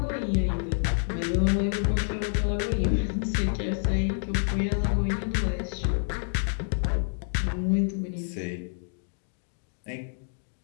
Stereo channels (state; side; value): silent; right; digital silence